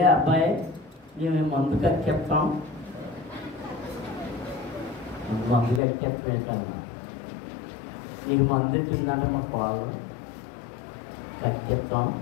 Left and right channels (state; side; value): drops out; right; at 5.8 s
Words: అబ్బాయి మేము మందు కక్కెత్తాం, మందు కక్కెత్తమేంటన్నా, నీకు మందు ఇచ్చిందంటే మా పాలు కక్కెత్తాం